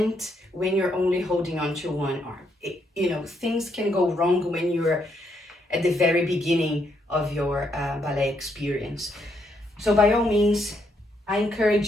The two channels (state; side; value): normal; both; correlation 0.75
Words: when you're only holding on to one arm. Things can go wrong when you're at the very beginning of your ballet experience. So by all means, I